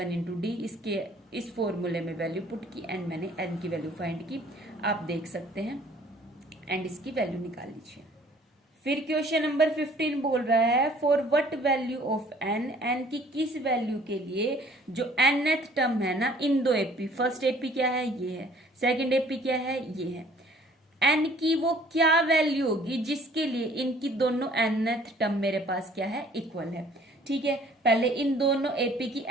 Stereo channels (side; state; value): both; normal; correlation 0.55